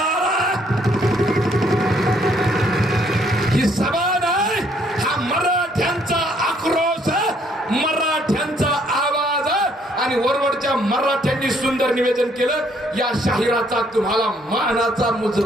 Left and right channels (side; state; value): both; normal; correlation 0.67